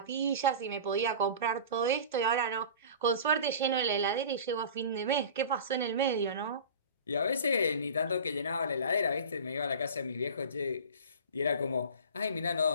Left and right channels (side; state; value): both; inverted; correlation -0.37